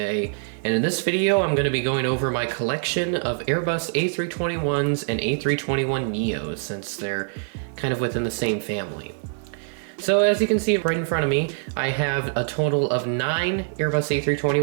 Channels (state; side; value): silent; left; digital silence